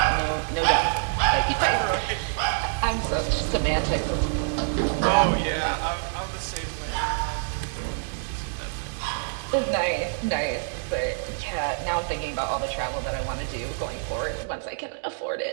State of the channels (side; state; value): left; silent; digital silence